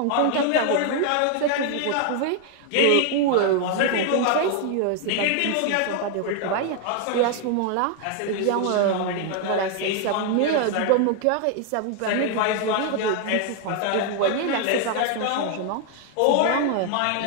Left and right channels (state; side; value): different; both; correlation 0.01